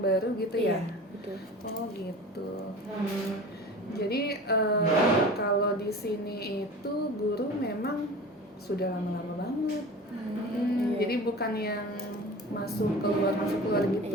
baru gitu ya? Iya, betul. Oh gitu. Jadi kalau di sini itu guru memang sudah lama-lama banget. Iya. Jadi bukan yang masuk keluar gitu.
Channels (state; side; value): normal; both; correlation 0.37